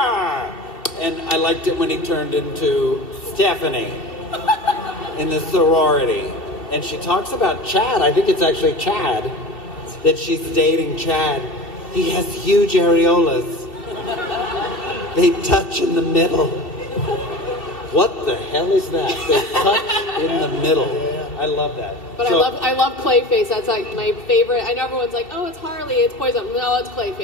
And I liked it when he turned into Stephanie in the sorority. And she talks about Chad, I think it's actually Chad, that she's dating Chad. He has huge areolas. They touch in the middle. What the hell is that? They touch in the middle. I love that. But so, I love Clayface. That's like my favorite. I know everyone's like, oh, it's Harley, it's Poison. No, it's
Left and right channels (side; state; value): right; late; 2.5 ms